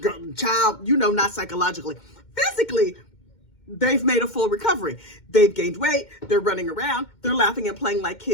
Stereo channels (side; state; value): right; late; 2.1 ms